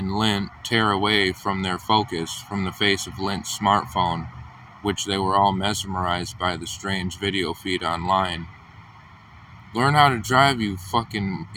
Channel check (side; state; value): both; identical; correlation 1.00